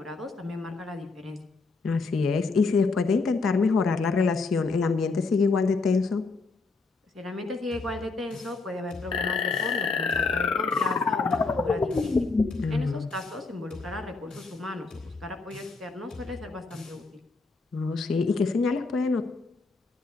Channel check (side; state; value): right; quieter; 4.0 dB